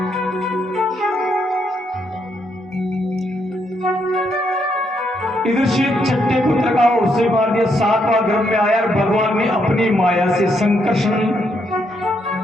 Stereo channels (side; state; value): both; normal; correlation 0.76